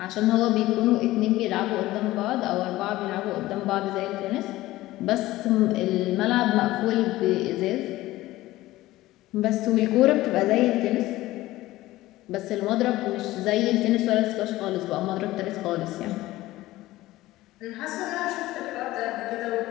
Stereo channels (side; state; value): right; quieter; 17.1 dB